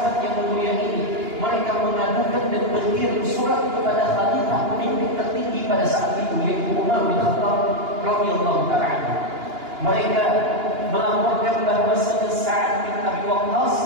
yang mulia ini, mereka mengadukan dan berkirim surat kepada khalifah pemimpin tertinggi pada saat itu, yaitu Umar bin Khattab radhiyallahu ta'ala. Mereka melaporkan bahwa Sa'ad bin Abi Waqqas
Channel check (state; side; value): late; left; 2.9 ms